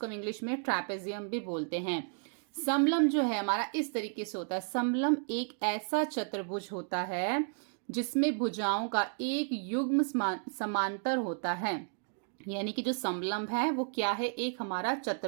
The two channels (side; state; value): left; silent; 56 dB below the other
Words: हम इंग्लिश में ट्रैपेजियम भी बोलते हैं। समलंब जो है हमारा इस तरीके से होता है। समलंब एक ऐसा चतुर्भुज होता है जिसमें भुजाओं का एक युग्म समांतर होता है। यानी कि जो समलंब है वो क्या है, एक हमारा